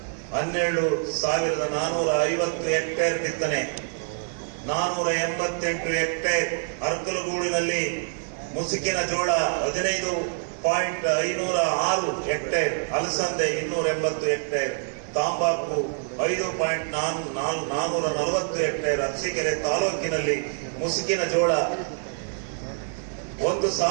12,450 ಹೆಕ್ಟೇರ್ ಬಿತ್ತನೆ, 488 ಹೆಕ್ಟೇರ್. ಅರ್ಕಲಗೂಡಿನಲ್ಲಿ ಮುಸುಕಿನ ಜೋಳ 15.506 ಹೆಕ್ಟೇರ್, ಅಲಸಂದೆ 280 ಹೆಕ್ಟೇರ್, ತಾಂಬಾಕು 5.440 ಹೆಕ್ಟೇರ್. ಅರಸೀಕೆರೆ ತಾಲೂಕಿನಲ್ಲಿ ಮುಸುಕಿನ ಜೋಳ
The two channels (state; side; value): silent; left; digital silence